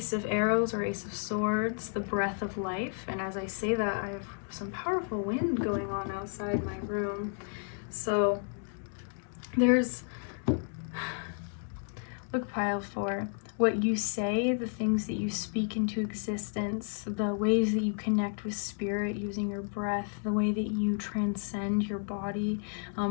of Arrows or Ace of Swords, the breath of life. And as I say that, I have some powerful wind going on outside my room. So there's, look, pile 4. What you say, the things that you speak into existence, the ways that you connect with spirit using your breath, the way that you transcend your body,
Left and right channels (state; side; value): silent; right; 56 dB below the other